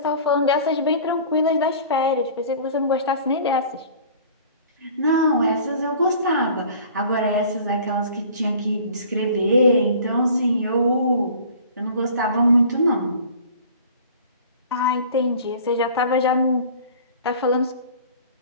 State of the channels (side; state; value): both; inverted; correlation -0.45